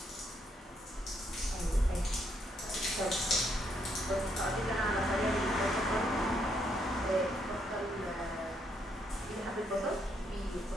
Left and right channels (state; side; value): normal; both; correlation 0.74